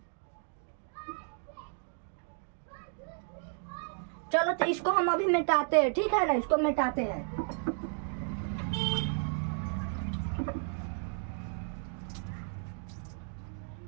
चलो तो इसको हम अभी मिटाते हैं, ठीक है ना, इसको मिटाते हैं।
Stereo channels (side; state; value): left; silent; 55 dB below the other